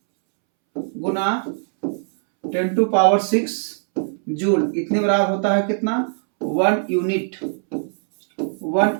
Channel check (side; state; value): left; silent; 65 dB below the other